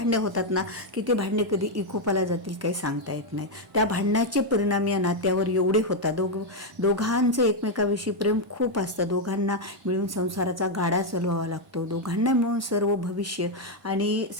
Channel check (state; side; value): normal; both; correlation 0.01